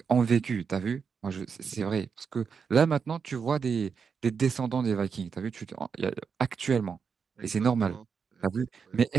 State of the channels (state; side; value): quieter; left; 6.0 dB